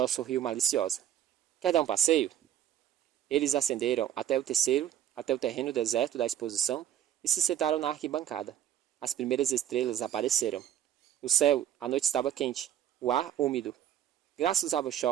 sorriu maliciosa. Quer dar um passeio? Eles ascenderam até o terreno deserto da exposição e se sentaram na arquibancada. As primeiras estrelas apareceram. No céu, a noite estava quente, o ar úmido. Graça usava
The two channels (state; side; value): quieter; left; 11.0 dB